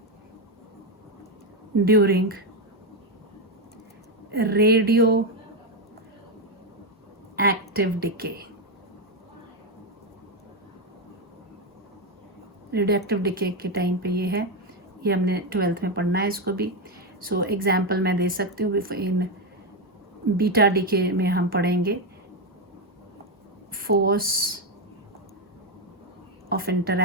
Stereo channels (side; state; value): both; normal; correlation 0.07